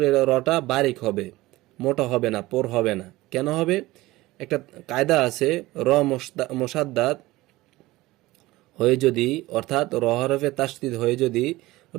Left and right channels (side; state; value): left; quieter; 18.8 dB